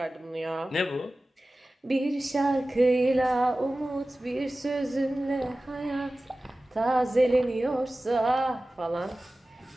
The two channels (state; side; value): normal; both; correlation 0.96